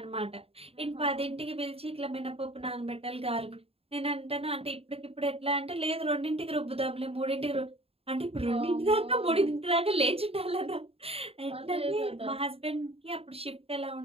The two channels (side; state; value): left; late; 0.28 ms